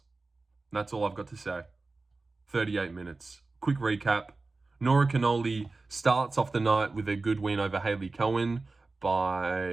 That's all I've got to say. 38 minutes. Quick recap. Nora Cornolle starts off the night with a good win over Hailey Cowan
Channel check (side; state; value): left; quieter; 3.6 dB